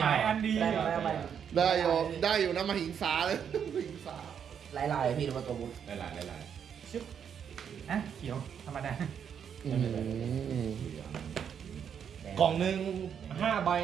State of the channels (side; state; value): left; quieter; 7.9 dB